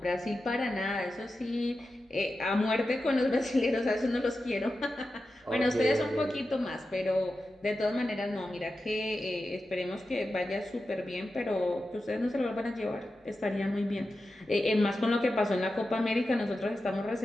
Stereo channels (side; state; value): both; normal; correlation 0.91